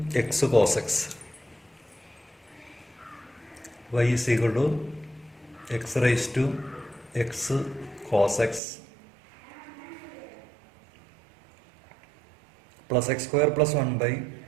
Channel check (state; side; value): drops out; left; at 8.6 s